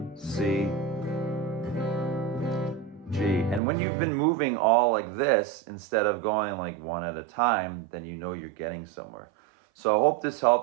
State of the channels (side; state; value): left; drops out; at 3.6 s